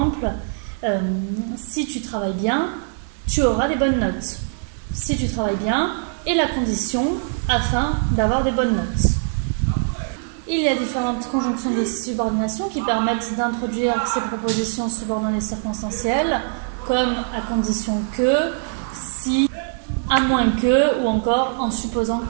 si tu travailles bien, tu auras des bonnes notes. Si tu travailles bien, est la condition afin d'avoir des bonnes notes. Il y a différentes conjonctions de subordination qui permettent d'introduire ces propositions subordonnées circonstancielles, comme à condition que, si, à moins que, ou encore en supposant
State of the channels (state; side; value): silent; left; digital silence